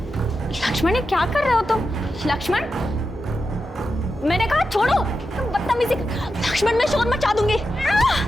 ये क्या कर रहे हो तुम? लक्ष्मण, मैंने कहा छोड़ो, तुम बदतमीजी। लक्ष्मण मैं शोर मचा दूंगी।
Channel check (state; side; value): normal; both; correlation 0.89